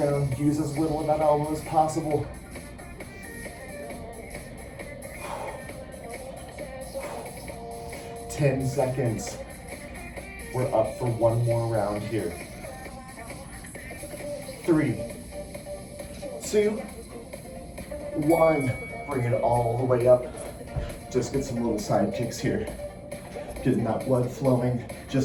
Use as little of that elbow as possible. 10 seconds. We're up for one more round here. 3, 2, 1. Bring it all the way up. Just get some little side kicks here. Getting that blood flowing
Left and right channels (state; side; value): identical; both; correlation 1.00